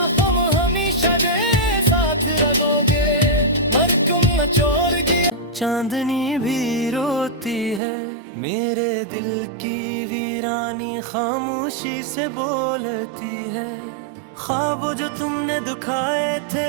हम हमेशा दे साथ रहोगे, मर तुम न छोड़ गया। चांदनी भी रोती है, मेरे दिल की वीरानी खामोशी से बोलती है। ख्वाब जो तुमने दुखाए थे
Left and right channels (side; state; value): left; drops out; at 7.8 s